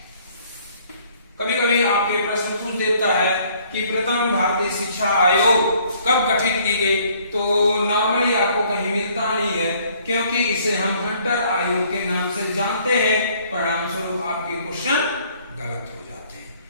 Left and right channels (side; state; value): both; inverted; correlation -0.61